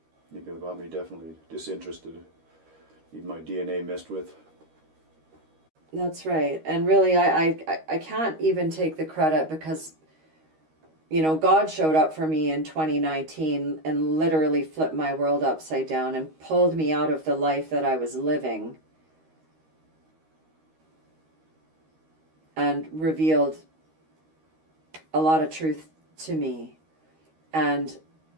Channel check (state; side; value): late; left; 13 ms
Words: You could have got me definitely disinterested. Need my DNA messed with. That's right. And really, I can't even take the credit because, God showed up for me in 2019 and literally flipped my world upside down and pulled me out of the life that I was living and revealed a lot of truth to me. And